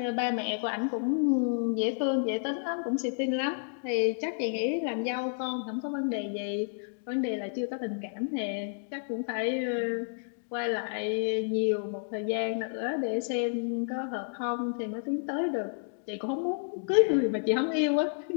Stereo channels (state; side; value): silent; right; digital silence